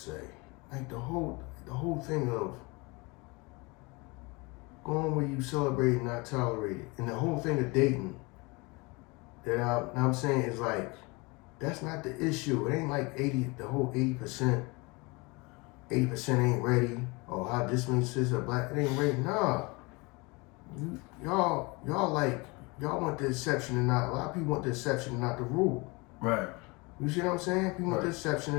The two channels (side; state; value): right; quieter; 26.7 dB